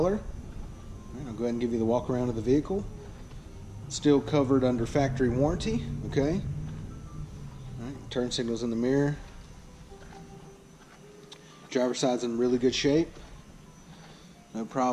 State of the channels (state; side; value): identical; both; correlation 1.00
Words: All right, I'll go ahead and give you the walk around of the vehicle. Still covered under factory warranty. Okay. All right, turn signals in the mirror. Driver's side's in really good shape. No